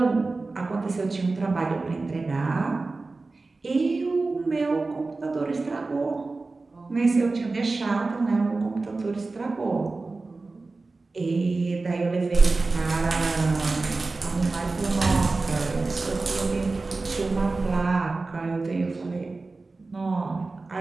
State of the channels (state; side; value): quieter; left; 3.6 dB